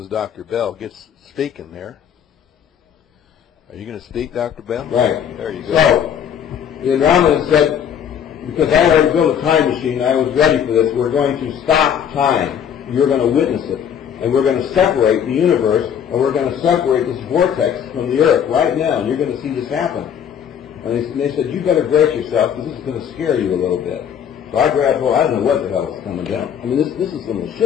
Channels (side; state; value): right; quieter; 8.6 dB